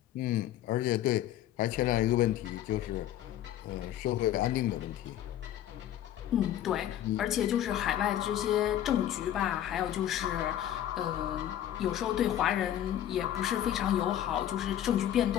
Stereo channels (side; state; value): right; quieter; 11.6 dB